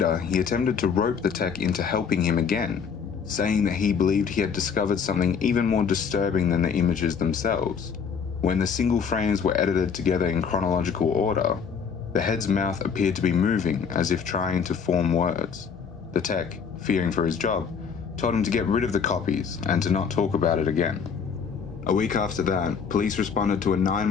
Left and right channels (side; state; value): right; quieter; 6.4 dB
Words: he attempted to rope the tech into helping him again, saying that he believed he had discovered something even more disturbing than the images themselves. When the single frames were edited together in chronological order, the head's mouth appeared to be moving as if trying to form words. The tech, fearing for his job, told him to get rid of the copies and to not talk about it again. A week after that, police responded to a